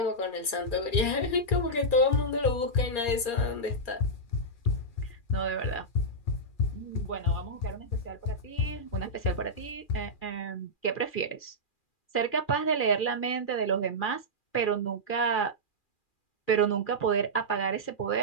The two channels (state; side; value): late; right; 2.4 ms